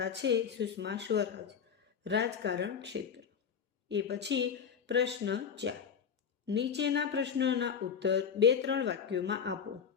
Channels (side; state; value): right; quieter; 7.2 dB